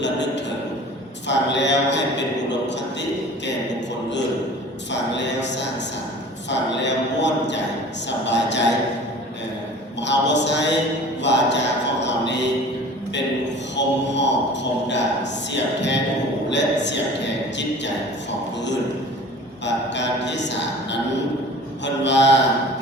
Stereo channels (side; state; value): both; normal; correlation 0.43